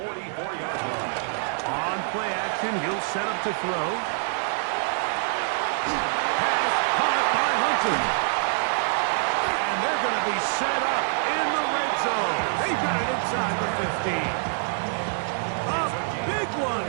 44-yard line. On play action, he'll set up to throw. Pass caught by Hunter. And they're going to be set up in the red zone. They got it inside the 15. A big one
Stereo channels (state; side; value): silent; left; digital silence